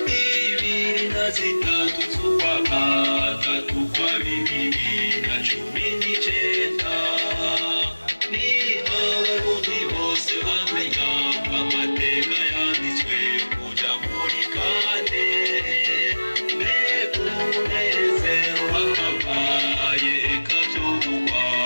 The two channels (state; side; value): inverted; both; correlation -1.00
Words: ibiri na zitatu z'ukwa gatatu kwa 2019 niho abarundi bose bamenya amateka yanditswe kuja muri kane mbega umunezero wakabaye